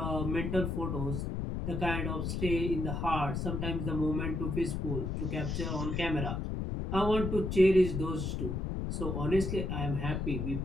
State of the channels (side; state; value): left; noise; rumble, 2 dB below the sound